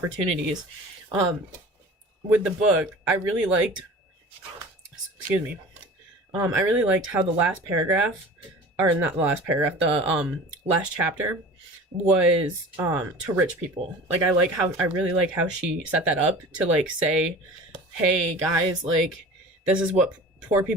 With the book, I really liked I really liked how the last paragraph, or not the last paragraph, the last chapter was to rich people. I really like how she set that up to say, hey guys, this is what poor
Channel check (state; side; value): normal; both; correlation 0.39